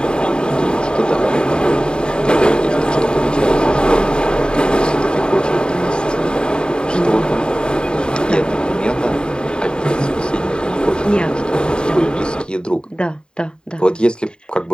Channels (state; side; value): late; right; 0.049 ms